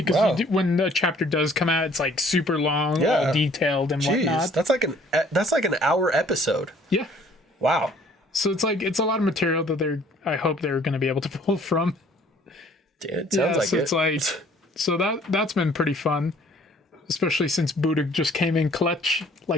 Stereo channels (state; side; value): normal; both; correlation 0.57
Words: Wow. you do, when the chapter does come out, it's like super long, Yeah. all detailed and Jeez, whatnot. that's like an hour episode. Yeah. Wow. So it's a lot of material that I hope they're going to be able to pull from. Dude, it sounds like so it. it's like so that's been pretty fun. especially since Buddha just came in clutch,